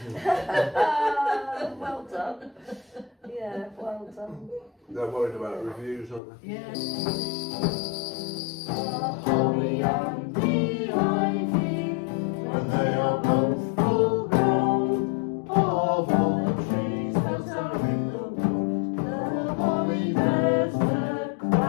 Well done. Yeah, well done. they're worried about reviews, aren't they? Yeah. Holly and the ivy, when they are both full grown, of all the trees that are in the wood, the holly bears the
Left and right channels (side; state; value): right; drops out; at 6.2 s